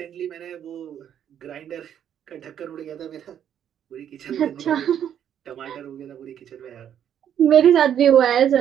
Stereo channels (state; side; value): quieter; left; 9.6 dB